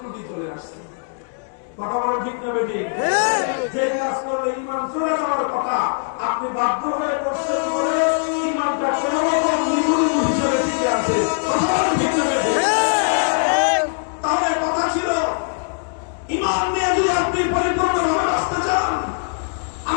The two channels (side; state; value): right; silent; digital silence